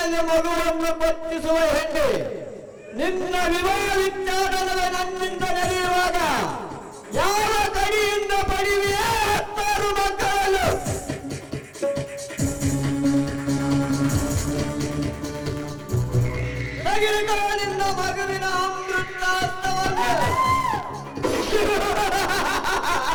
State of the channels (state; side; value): identical; both; correlation 1.00